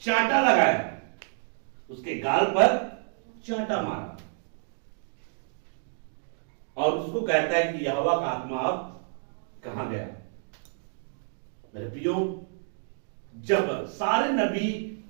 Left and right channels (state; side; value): silent; left; digital silence